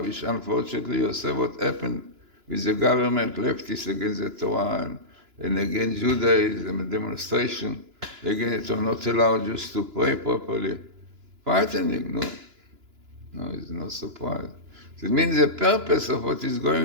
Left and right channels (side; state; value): left; late; 2.9 ms